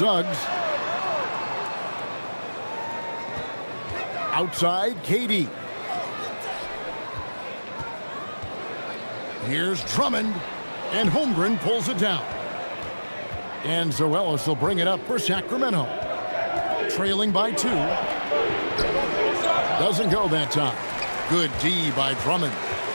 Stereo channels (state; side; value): inverted; both; correlation -1.00